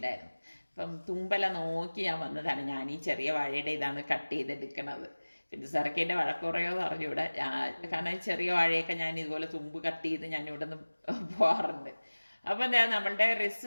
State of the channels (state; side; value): inverted; both; correlation -1.00